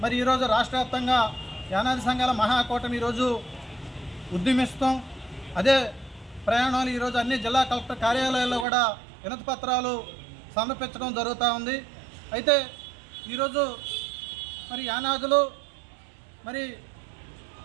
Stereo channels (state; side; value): drops out; left; at 8.7 s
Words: మరి ఈరోజు రాష్ట్ర వ్యాప్తంగా యానాది సంఘాల మహాకూటమి ఈరోజు ఉద్యమిస్తాం. అదే ప్రయాణాలు ఈరోజు అన్ని జిల్లా కలెక్టర్ కార్యాలయాల్లో కూడా వినతి పత్రాలు సమర్పించడం జరుగుతూ ఉంది. అయితే ఈరోజు మరి యానాదులు మరి